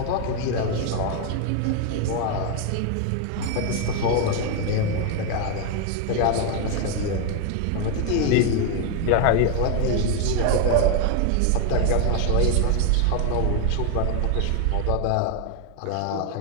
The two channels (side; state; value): both; different; correlation 0.01